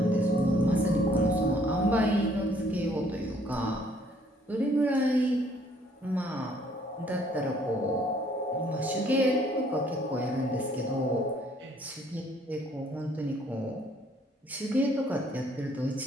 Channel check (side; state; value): both; normal; correlation 0.62